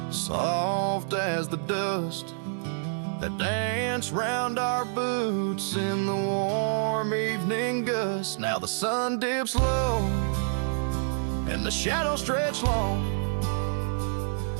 soft as the dust that danced round our boots in the warm evening gust. Now the sun dips low and the shadows stretch long,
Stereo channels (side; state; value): left; silent; digital silence